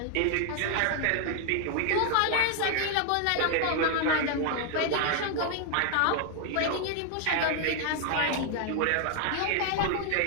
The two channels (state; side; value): different; both; correlation 0.00